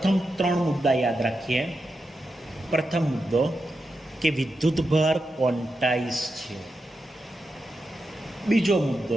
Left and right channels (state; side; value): normal; both; correlation 0.88